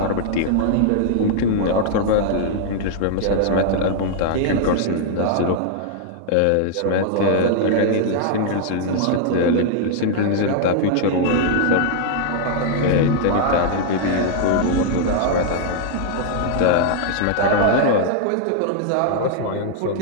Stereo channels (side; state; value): both; different; correlation 0.00